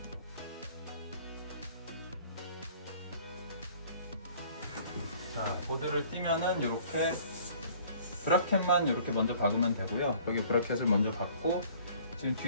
자, 보드를 띄면은 이렇게 브라켓만 이렇게 먼저 박으면 되고요. 여기 브라켓을 먼저 박고, 지금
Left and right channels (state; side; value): inverted; both; correlation -0.53